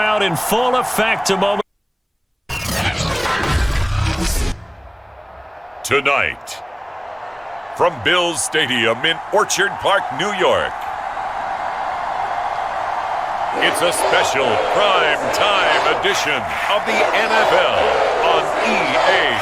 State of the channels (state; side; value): identical; both; correlation 1.00